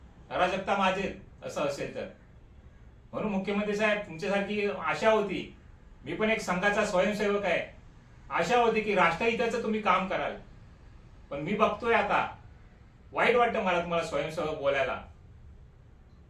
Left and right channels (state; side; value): identical; both; correlation 1.00